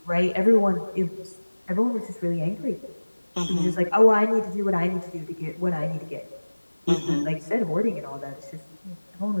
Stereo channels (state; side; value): inverted; both; correlation -1.00